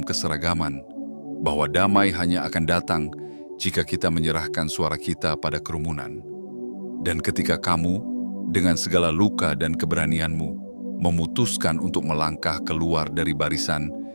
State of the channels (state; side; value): inverted; both; correlation -1.00